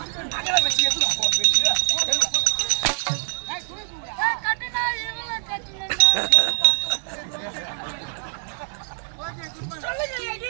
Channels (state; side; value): silent; left; digital silence